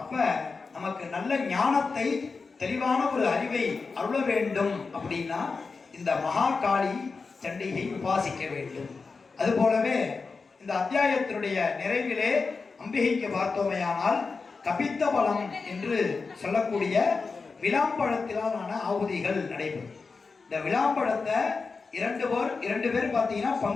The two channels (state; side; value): quieter; right; 4.5 dB